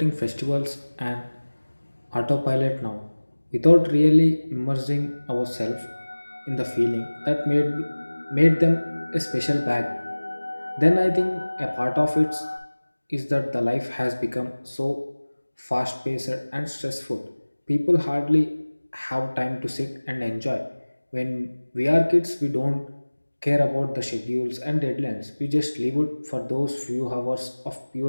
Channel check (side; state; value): both; inverted; correlation -1.00